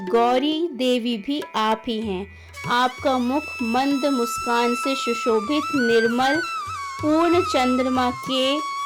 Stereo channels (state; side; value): identical; both; correlation 1.00